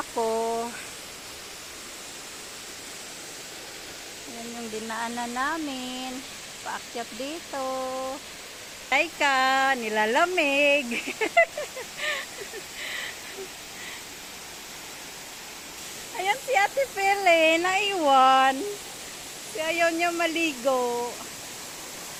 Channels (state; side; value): identical; both; correlation 1.00